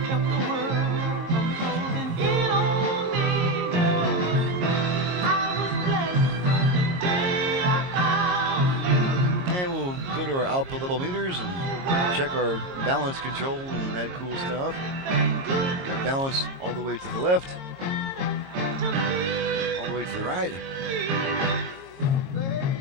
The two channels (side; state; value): left; late; 22 ms